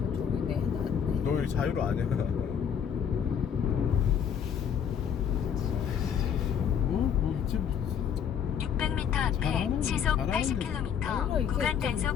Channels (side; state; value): right; quieter; 8.0 dB